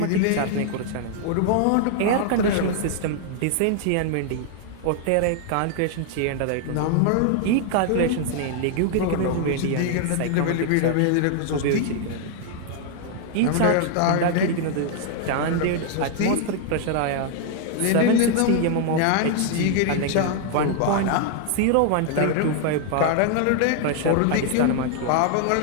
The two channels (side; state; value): both; different; correlation 0.00